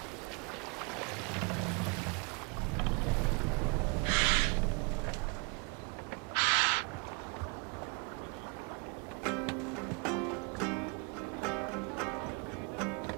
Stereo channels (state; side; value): quieter; left; 33.7 dB